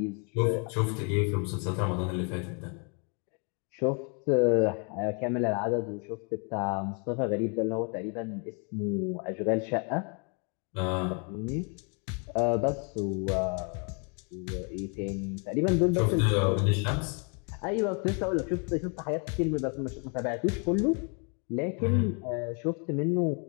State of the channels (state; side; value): quieter; right; 37.3 dB